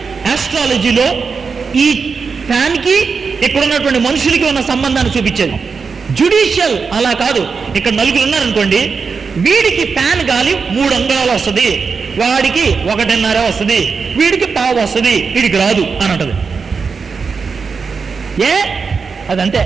ఆస్ట్రాలజీలో ఈ ఫ్యాన్కి ఇక్కడ ఉన్నటువంటి మనుషులకి ఉన్న సంబంధాన్ని చూపించేది. జుడిషియల్ అలా కాదు. ఇక్కడ నలుగురు ఉన్నారనుకోండి, వీడికి ఫ్యాన్ గాలి 3 అంగుళాలు వస్తుంది, వాడికి 1.5 వస్తుంది, వీడికి 1/2 వస్తుంది, వీడికి రాదు అని అంటది. అదంతే,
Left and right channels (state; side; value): quieter; left; 5.3 dB